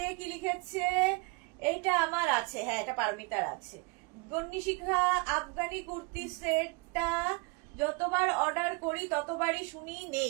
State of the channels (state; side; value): quieter; left; 29.5 dB